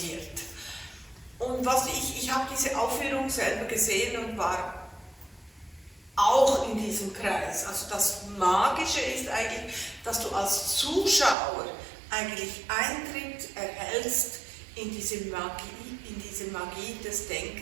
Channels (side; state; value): left; drops out; at 11.4 s